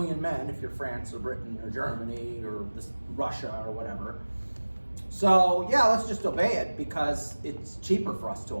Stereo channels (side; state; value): both; inverted; correlation -1.00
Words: men if you're France or Britain or Germany or Russia or whatever. So yeah, let's just obey it because it's cheaper for us to